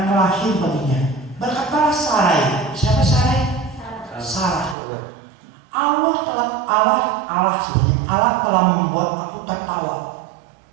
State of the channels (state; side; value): drops out; left; at 4.8 s